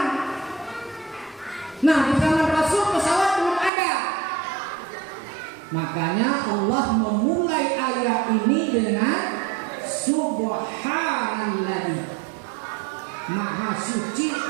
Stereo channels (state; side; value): drops out; left; at 3.7 s